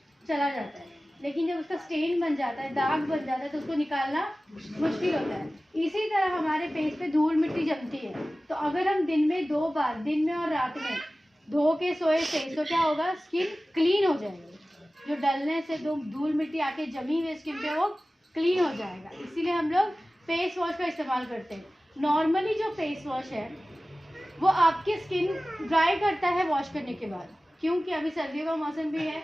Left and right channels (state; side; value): normal; both; correlation 0.96